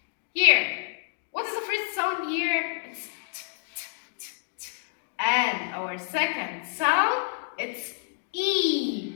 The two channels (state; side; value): silent; right; digital silence